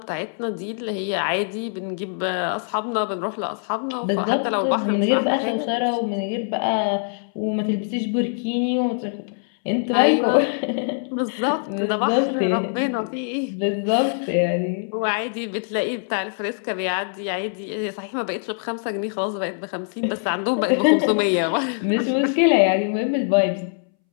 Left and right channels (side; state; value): right; silent; 63 dB below the other